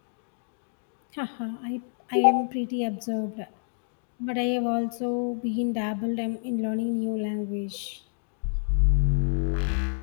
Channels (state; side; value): silent; right; digital silence